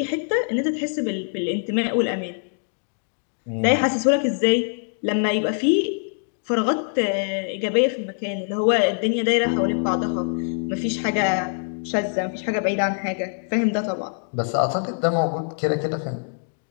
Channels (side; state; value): right; silent; digital silence